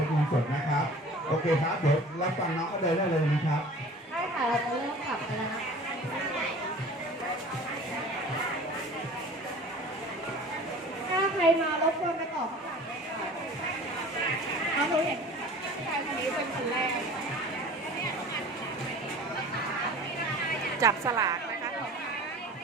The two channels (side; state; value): both; normal; correlation 0.43